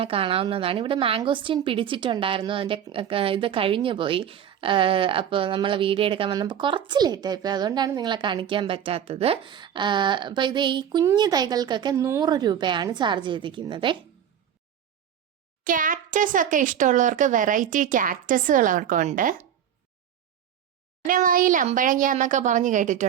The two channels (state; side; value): quieter; left; 9.4 dB